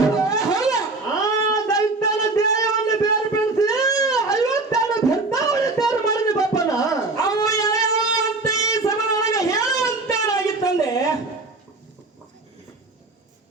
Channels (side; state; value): left; quieter; 3.3 dB